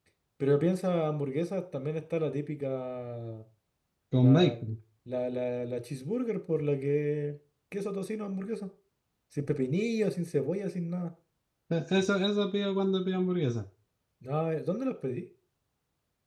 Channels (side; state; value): both; identical; correlation 1.00